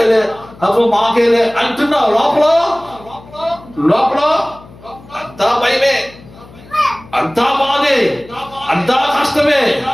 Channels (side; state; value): left; noise; hum, 21 dB below the sound